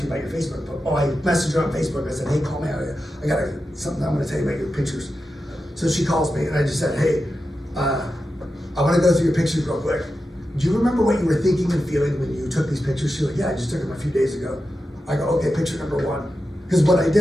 you about your Facebook?" I messaged her on Facebook. I said, "Hey, call me out. I got something I'm going to tell you about your pictures." So she calls me, and I just said, "Hey, I want to go through your pictures real quick. Do you remember what you were thinking and feeling when you took these pictures?" She's like, "Yeah, I just took them a few days ago." I go, "Okay, picture number 1. Because what I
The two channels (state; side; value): normal; both; correlation 0.90